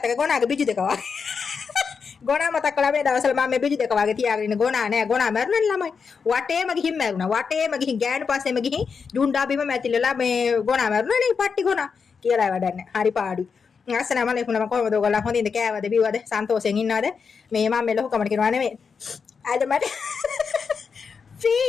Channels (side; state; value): right; quieter; 5.7 dB